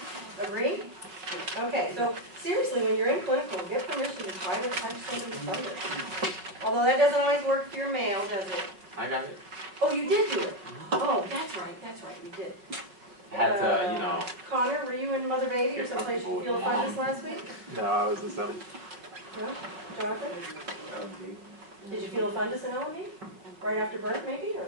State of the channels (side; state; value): left; late; 5.5 ms